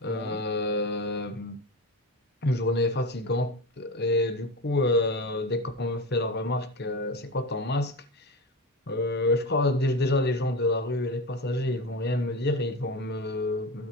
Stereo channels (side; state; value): both; normal; correlation 0.24